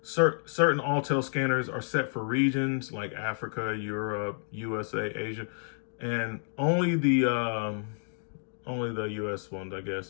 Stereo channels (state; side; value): silent; right; digital silence